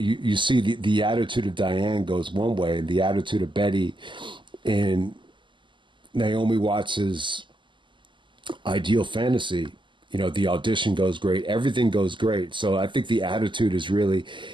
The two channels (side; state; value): left; late; 0.24 ms